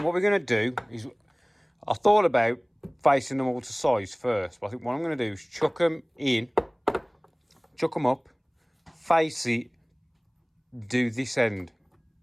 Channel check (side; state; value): both; identical; correlation 1.00